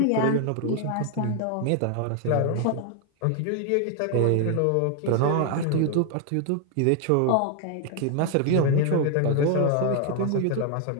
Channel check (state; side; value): different; both; correlation 0.00